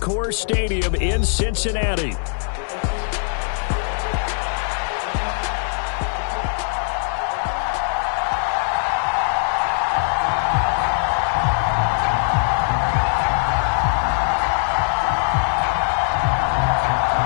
Stadium in Cincinnati.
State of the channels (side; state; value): right; silent; 65 dB below the other